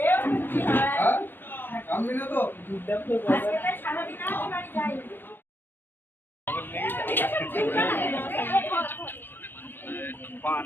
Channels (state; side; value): late; right; 0.098 ms